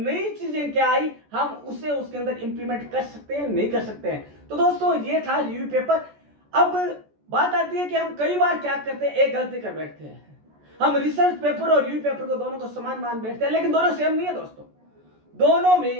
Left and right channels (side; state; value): left; late; 14 ms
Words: चीजें क्या आई, हम उसे उसके अंदर इंप्लीमेंट कर सकते हैं, नहीं कर सकते हैं। तो दोस्तों, ये था रिव्यू पेपर। अब बात आती है कि हम कई बार क्या करते हैं, एक गलती कर बैठते हैं। हम रिसर्च पेपर और रिव्यू पेपर को दोनों को समान मान बैठते हैं, लेकिन दोनों सेम नहीं है दोस्तों। दोनों